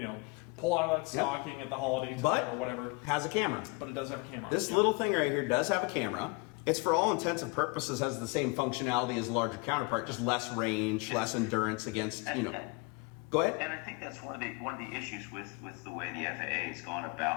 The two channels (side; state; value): right; quieter; 28.8 dB